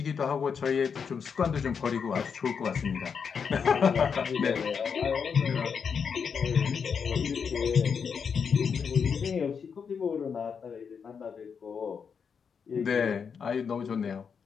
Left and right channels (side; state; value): right; quieter; 6.4 dB